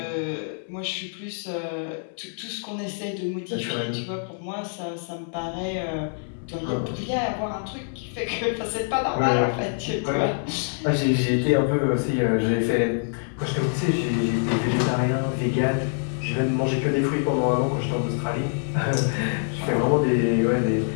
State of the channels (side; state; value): right; silent; 61 dB below the other